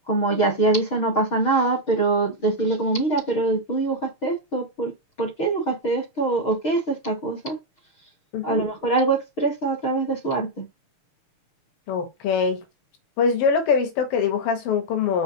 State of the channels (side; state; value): right; late; 6.4 ms